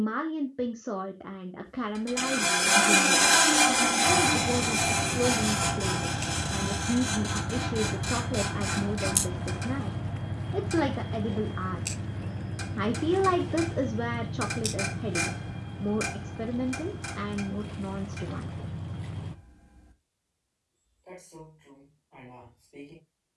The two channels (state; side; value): identical; both; correlation 1.00